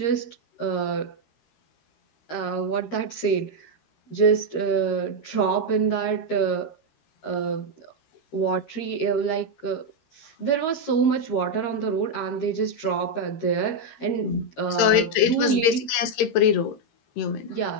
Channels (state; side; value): late; right; 13 ms